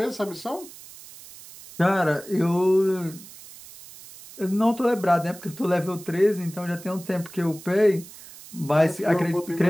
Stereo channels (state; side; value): noise; right; hiss, 18 dB below the sound